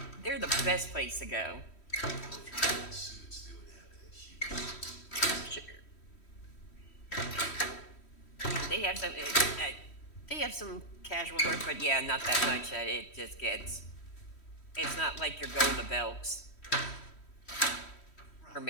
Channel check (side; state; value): right; late; 3.1 ms